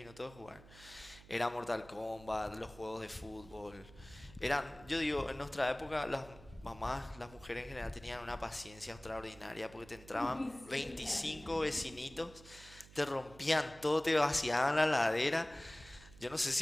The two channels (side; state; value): right; noise; hum, 21 dB below the sound